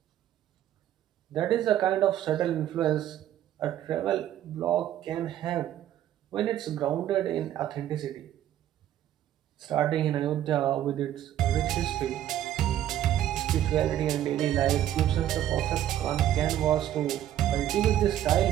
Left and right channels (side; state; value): left; quieter; 11.9 dB